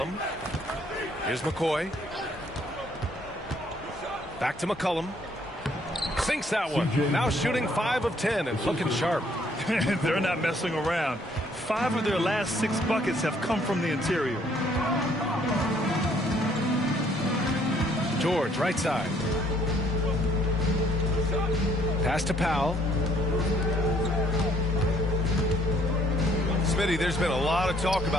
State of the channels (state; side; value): normal; both; correlation 0.65